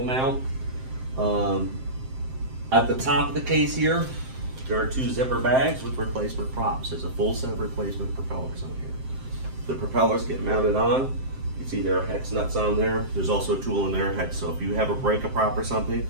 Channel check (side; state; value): left; late; 7.7 ms